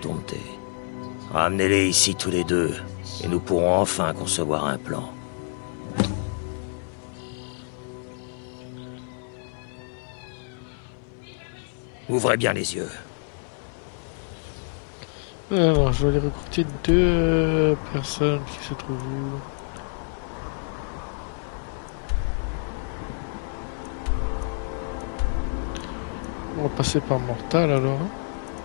Ramenez-les ici tous les deux, et nous pourrons enfin concevoir un plan. Ouvrez bien les yeux. Alors, je vais aller recruter 2 personnes qui se trouvent où? On va passer par Mortal alors.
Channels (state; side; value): silent; right; 60 dB below the other